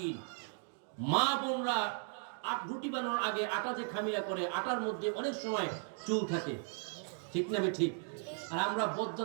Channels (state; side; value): silent; left; 53 dB below the other